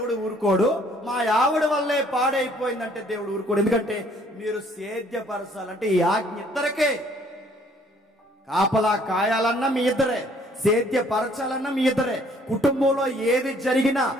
ఊరుకోడు, మా ఆవిడ వల్లే పాడైపోయిందంటే దేవుడు ఊరుకోడు. ఎందుకంటే మీరు సేద్యపరచాలంటే ఈ ఆజ్ఞ ఇద్దరికే. కాపలా కాయాలన్నా మీ ఇద్దరే, సేద్యపరచాలన్నా మీ ఇద్దరే. కుటుంబంలో ఏది జరిగినా,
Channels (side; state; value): both; normal; correlation 0.61